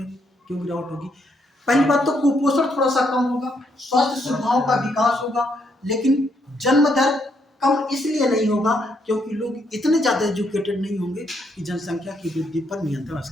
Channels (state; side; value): normal; both; correlation 0.75